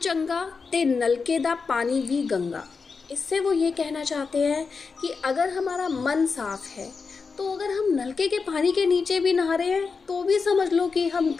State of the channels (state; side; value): quieter; right; 4.9 dB